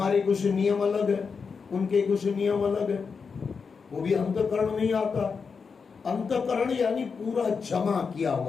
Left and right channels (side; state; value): right; quieter; 5.5 dB